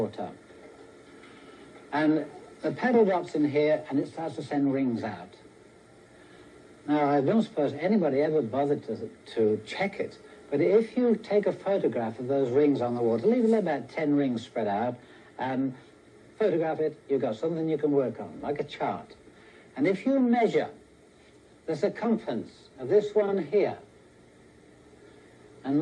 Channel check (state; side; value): identical; both; correlation 1.00